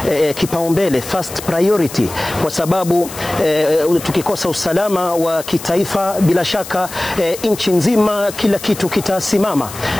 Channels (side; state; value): left; noise; hiss, 13 dB below the sound